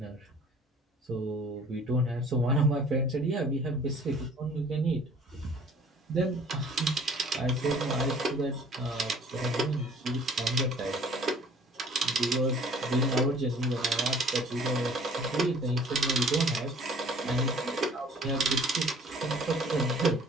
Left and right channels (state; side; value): normal; both; correlation 0.52